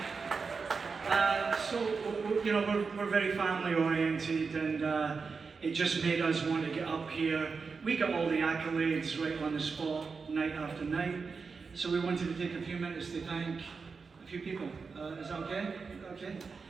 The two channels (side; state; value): left; quieter; 4.9 dB